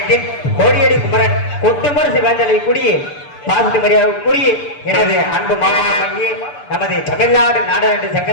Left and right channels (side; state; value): right; late; 6.8 ms